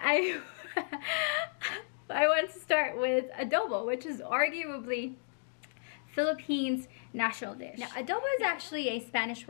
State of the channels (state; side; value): silent; right; digital silence